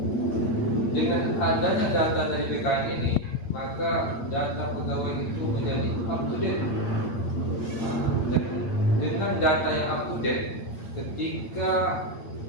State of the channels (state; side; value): late; right; 8.7 ms